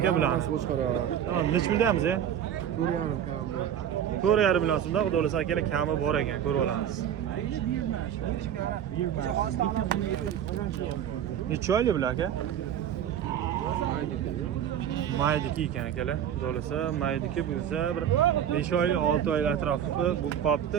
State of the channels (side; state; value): left; quieter; 9.7 dB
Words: bilamiz. Tamam, necha puldanmiz, e? 4.5 million so'mda, xudo xolasa akalar kami bor ekan, ko'rib olamiz. Necha oylik bular aka? Maydiki ekan akalar. Xudo xolasa maydiki bo'lsa bir 5 oylik, 6 oylik atrofi bu qopda